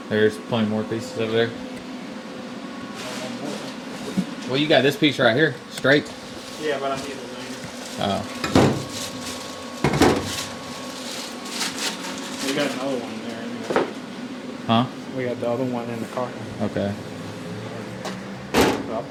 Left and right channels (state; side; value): identical; both; correlation 1.00